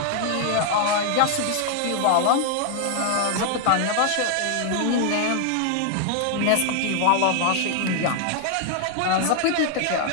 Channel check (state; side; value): different; both; correlation 0.00